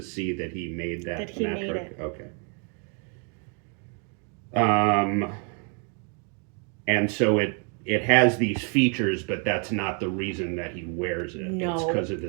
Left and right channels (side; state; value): left; quieter; 38.8 dB